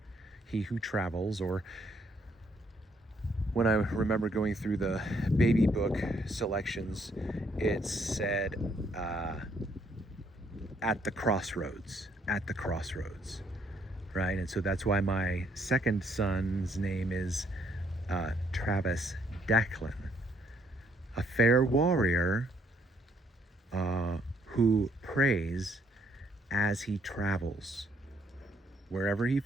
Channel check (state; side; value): normal; both; correlation 0.69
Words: he who travels, or when I remember going through the baby book selections, it said at the crossroads, right? And so that's why my second son's name is Travis Declan, a fair warrior who prays as he travels. Wherever he